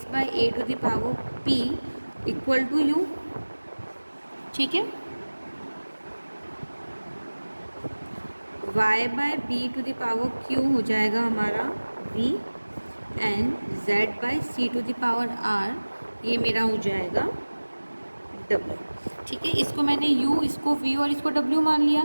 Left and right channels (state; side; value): inverted; both; correlation -1.00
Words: by a to the power p equal to u, ठीक है। y by b to the power q हो जाएगा हमारा v and z by c to the power r, ये मेरा हो जाएगा w, ठीक है। इसको मैंने u, इसको v और इसको w मान